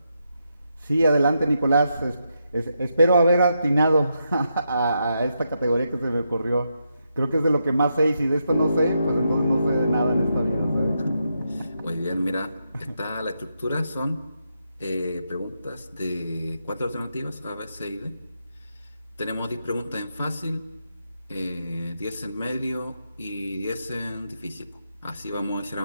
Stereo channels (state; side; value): inverted; both; correlation -0.83